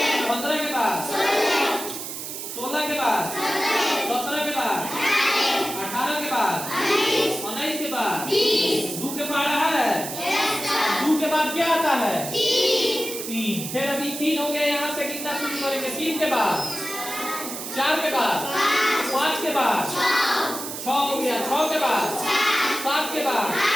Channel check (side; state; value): right; noise; hiss, 7 dB below the sound